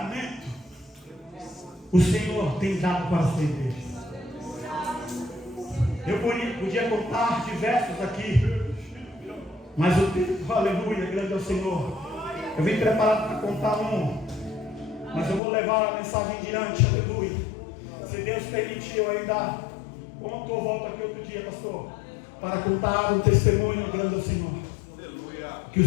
o Senhor tem dado para a sua igreja? Eu podia contar diversos aqui, mas o tempo, aleluia, grande é o Senhor. Eu vim preparado para contar um, mas eu vou levar a mensagem adiante, aleluia. Se Deus permitir, eu ainda conto ou volto aqui outro dia, pastor, para contar o testemunho grande ao Senhor, que o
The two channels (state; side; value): drops out; right; at 15.4 s